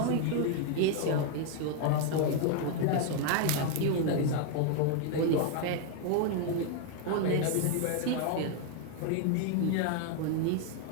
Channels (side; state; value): both; different; correlation 0.00